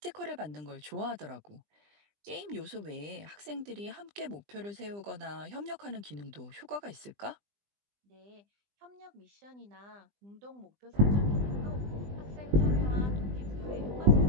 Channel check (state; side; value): late; left; 20 ms